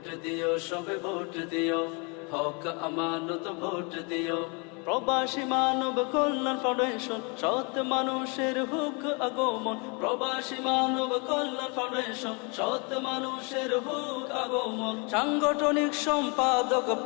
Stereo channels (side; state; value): right; quieter; 32.6 dB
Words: দিও সবে ভোট দিও, হক আমানত ভোট দিও। প্রবাসী মানব কল্যাণ ফাউন্ডেশন, সৎ মানুষের হুক আগমন। প্রবাসী মানব কল্যাণ ফাউন্ডেশন, সৎ মানুষের হুক আগমন। সাংগঠনিক সম্পাদক